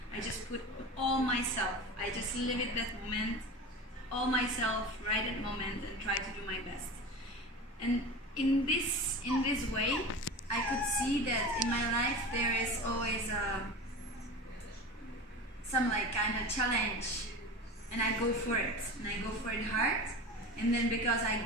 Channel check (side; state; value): both; normal; correlation 0.31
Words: I just put all myself. I just live it that moment, all myself, right at moment, and try to do my best. And in this way, I could see that in my life there is always some like kind of challenge, and I go for it, and I go for it hard. And then because